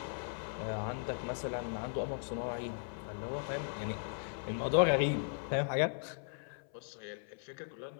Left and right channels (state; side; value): silent; right; 53 dB below the other